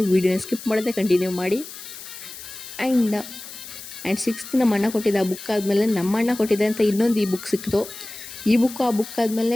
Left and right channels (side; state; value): left; noise; hiss, 13 dB below the sound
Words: ವೀಡಿಯೋನ ಸ್ಕಿಪ್ ಮಾಡದೆ ಕಂಟಿನ್ಯೂ ಮಾಡಿ. ಆ್ಯಂಡ್ ಸಿಕ್ಸ್ತ್ ನಮ್ಮ ಅಣ್ಣ ಕೊಟ್ಟಿದ್ದ ಆ ಬುಕ್ ಆದಮೇಲೆ ನಮ್ಮ ಅಣ್ಣ ಕೊಟ್ಟಿದ್ದೆ ಅಂತ ಇನ್ನೊಂದು ಈ ಬುಕ್ ಸಿಕ್ತು. ಈ ಬುಕ್ಕು ಆ ಬುಕ್ ಆದಮೇಲೆ